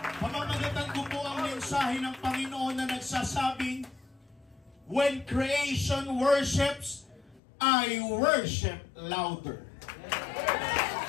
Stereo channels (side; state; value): right; drops out; at 7.4 s